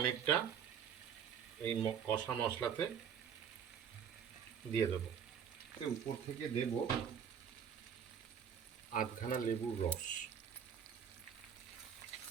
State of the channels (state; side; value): quieter; left; 7.9 dB